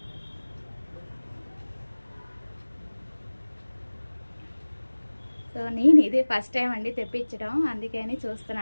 సో నేను ఇది ఫస్ట్ టైం అండి తెప్పించడం, అందుకని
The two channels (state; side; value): inverted; both; correlation -1.00